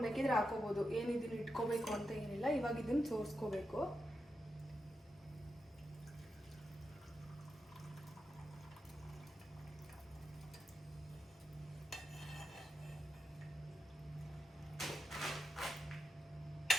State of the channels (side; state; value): both; normal; correlation 0.87